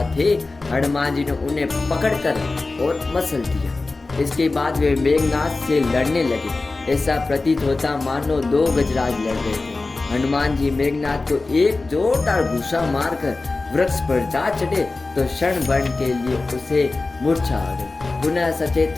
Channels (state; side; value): quieter; right; 3.5 dB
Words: थे, हनुमान जी ने उन्हें पकड़कर और मसल दिया। इसके बाद वे मेघनाथ से लड़ने लगे। ऐसा प्रतीत होता मानो दो गजराज लड़ रहे थे। हनुमान जी मेघनाथ को एक जोरदार घूसा मारकर वृक्ष पर जा चढ़े तो क्षण भर के लिए उसे मूर्छा आ गई। पुनः सचेत